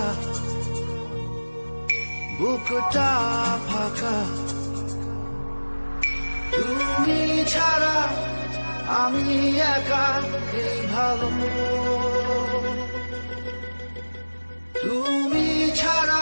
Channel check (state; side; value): inverted; both; correlation -1.00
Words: বুকটা ফাঁকা। তুমি ছাড়া আমি একা, এই ভালো। তুমি